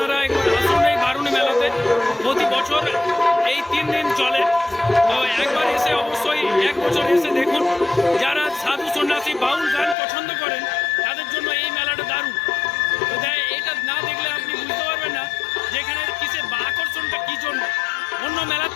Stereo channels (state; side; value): drops out; right; at 10.0 s